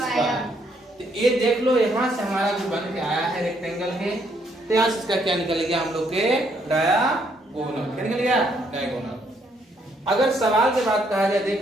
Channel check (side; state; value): both; normal; correlation 0.71